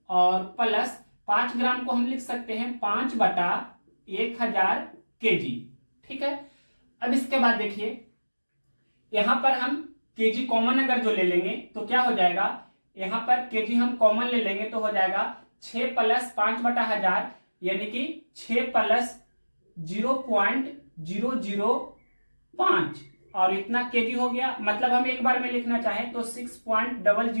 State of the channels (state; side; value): inverted; both; correlation -1.00